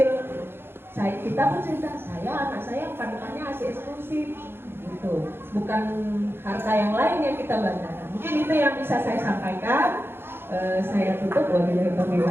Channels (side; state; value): left; late; 0.11 ms